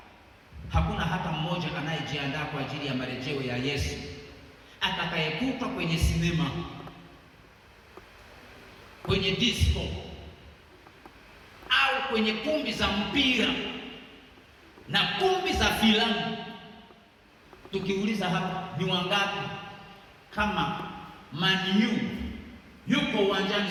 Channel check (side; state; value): both; identical; correlation 1.00